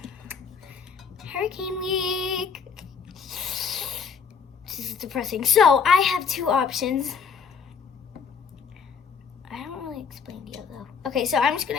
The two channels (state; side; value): quieter; right; 6.0 dB